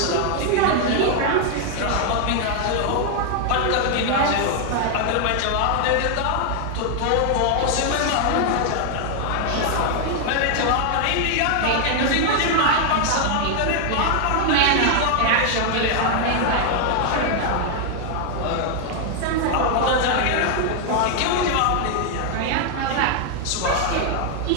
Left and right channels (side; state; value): both; different; correlation 0.00